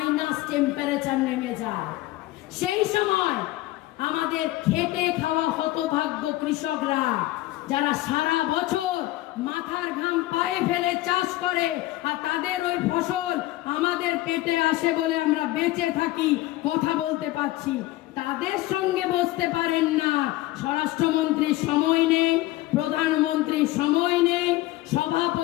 টেম্পারেচার নেমে যায়। সেই সময় আমাদের খেটে খাওয়া হতভাগ্য কৃষকরা, যারা সারা বছর মাথার ঘাম পায়ে ফেলে চাষ করে, আর তাদের ওই ফসল আমাদের পেটে আসে বলে আমরা বেঁচে থাকি, কথা বলতে পারছি, তাদের সঙ্গে বসতে পারেন না। স্বরাষ্ট্রমন্ত্রীর সময় নেই, প্রধানমন্ত্রীর সময় নেই,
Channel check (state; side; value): quieter; right; 17.3 dB